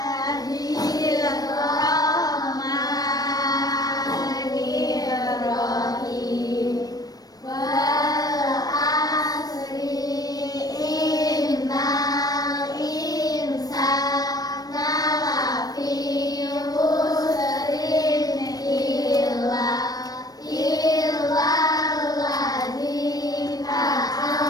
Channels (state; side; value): late; right; 0.18 ms